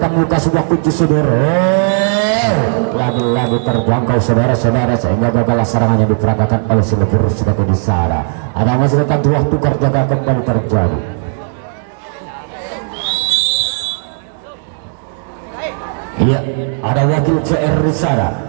membuka sebuah kunci sudut? Lagi-lagi terjangkau saudara-saudara, sehingga gagal serangan yang diperagakan oleh si lepur sebagai di sana. Ada masyarakat dua tukar jaga kembali terjadi. Ada wakil CR di sana,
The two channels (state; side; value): silent; left; digital silence